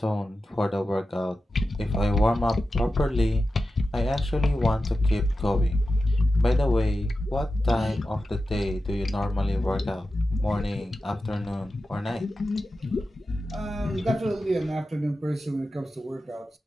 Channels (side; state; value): both; normal; correlation 0.92